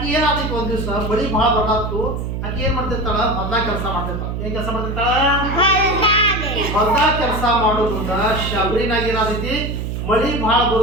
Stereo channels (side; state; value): right; noise; hum, 4 dB below the sound